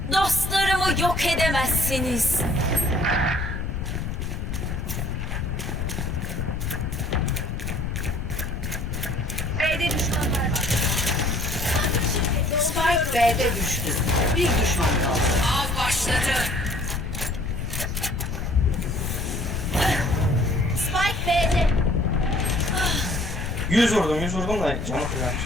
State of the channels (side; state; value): left; noise; rumble, 3 dB below the sound